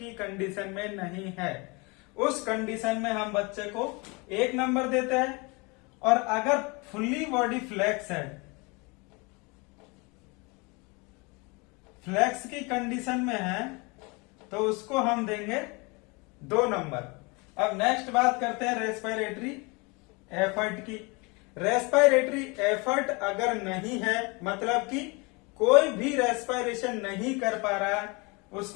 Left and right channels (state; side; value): quieter; right; 28.2 dB